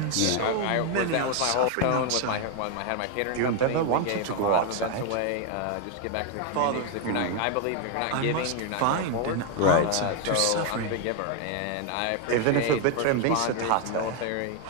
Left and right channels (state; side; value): different; both; correlation 0.01